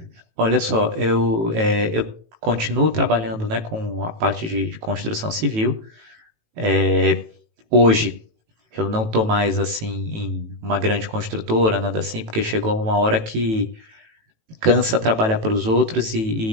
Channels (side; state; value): left; late; 18 ms